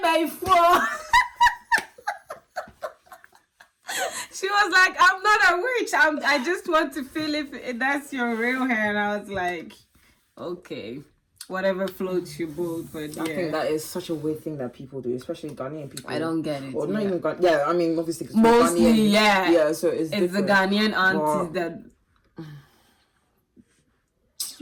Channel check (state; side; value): identical; both; correlation 1.00